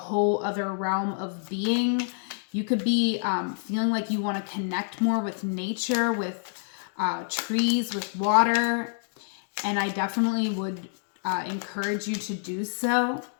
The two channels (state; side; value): silent; right; digital silence